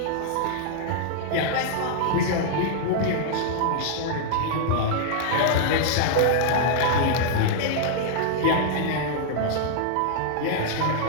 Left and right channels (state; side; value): different; both; correlation -0.01